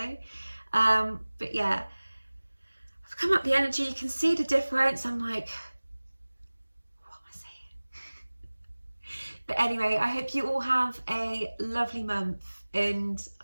But yeah, I've come up the energy, you can see the difference. I'm like, what am I saying? But anyway, I hope you all have a lovely month, and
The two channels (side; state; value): both; inverted; correlation -1.00